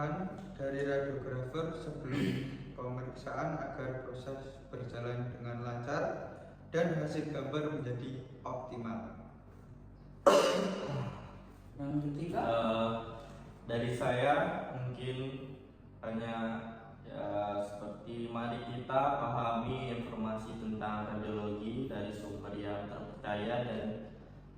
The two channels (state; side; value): identical; both; correlation 1.00